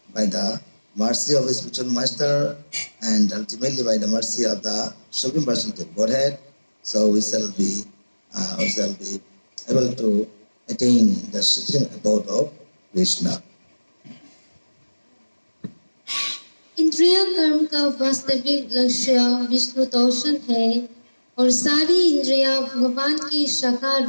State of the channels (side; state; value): both; inverted; correlation -1.00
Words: by the mercy of a spiritual master and ultimately by the mercy of the Supreme Personality of Godhead, so we shall be able to attain the supreme abode of Krishna. इंद्रिय कर्म का वास्तविक लक्ष्य विष्णु तोषण है और सारी इंद्रियां भगवान की साकार